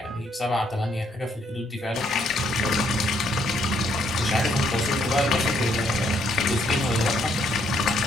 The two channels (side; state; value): both; normal; correlation 0.70